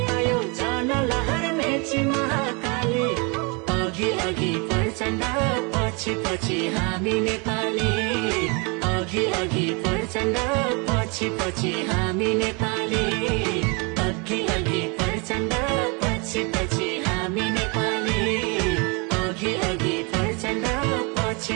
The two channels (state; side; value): quieter; left; 31.3 dB